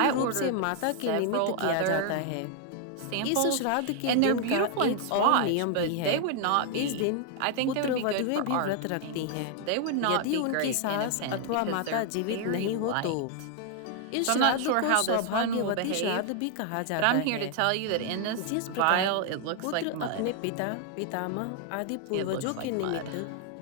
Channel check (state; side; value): different; both; correlation 0.00